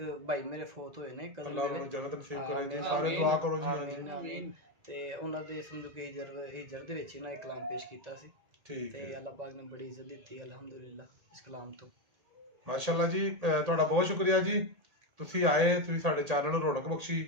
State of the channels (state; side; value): late; left; 1.8 ms